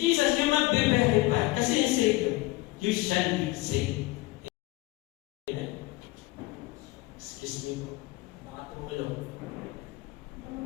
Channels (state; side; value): quieter; right; 21.0 dB